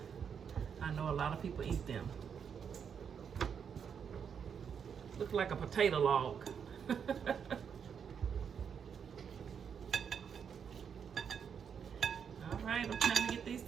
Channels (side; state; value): left; quieter; 7.2 dB